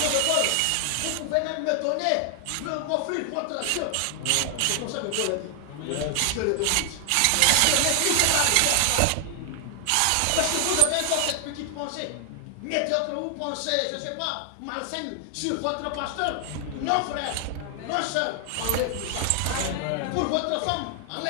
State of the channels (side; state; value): both; different; correlation 0.00